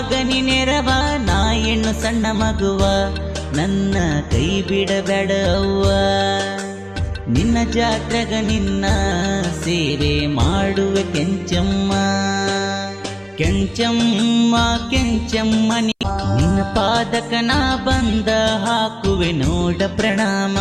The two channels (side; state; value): both; identical; correlation 1.00